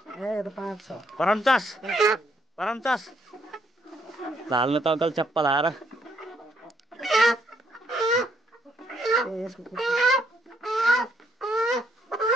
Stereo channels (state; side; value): normal; both; correlation 0.71